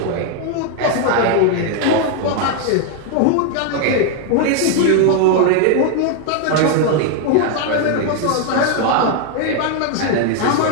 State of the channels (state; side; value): different; both; correlation 0.00